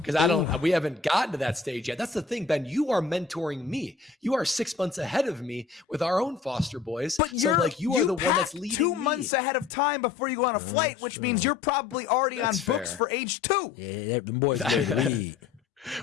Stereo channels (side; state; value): right; quieter; 5.2 dB